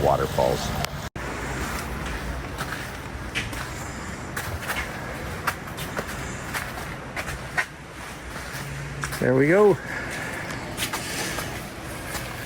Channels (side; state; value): both; identical; correlation 1.00